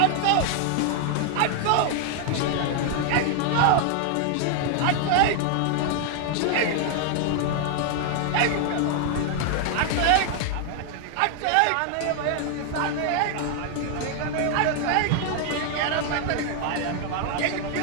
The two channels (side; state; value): both; different; correlation 0.00